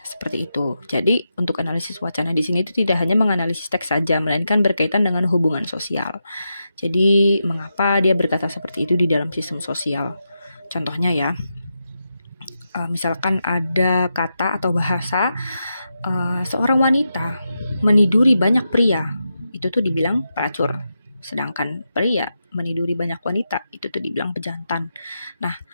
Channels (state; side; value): inverted; both; correlation -0.87